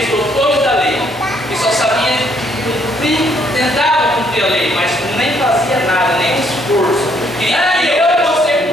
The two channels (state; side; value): normal; both; correlation 0.68